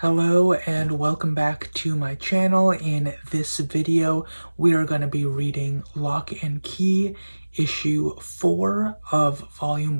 Hello and welcome back to my channel. In this video, we are going to be reading Lock and Key, issue 4 of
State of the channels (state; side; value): inverted; both; correlation -1.00